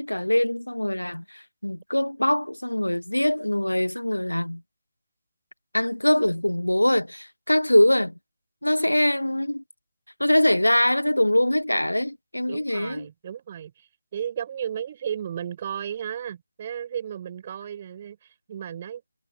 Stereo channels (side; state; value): both; inverted; correlation -0.98